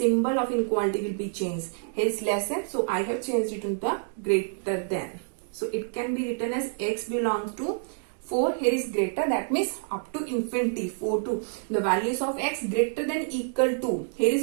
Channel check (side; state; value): left; silent; digital silence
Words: of inequality will be changed. Here is less than, so I have changed it into the greater than. So it can be written as x belongs to 4, here is greater, that means up to infinity, 4 to the values of x greater than equal to. Here